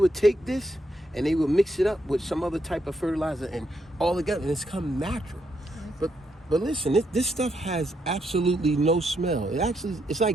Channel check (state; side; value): normal; both; correlation 0.78